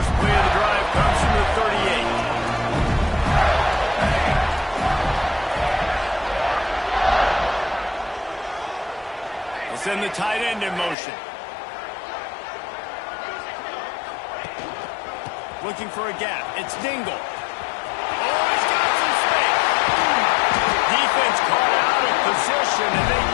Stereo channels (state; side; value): drops out; right; at 11.0 s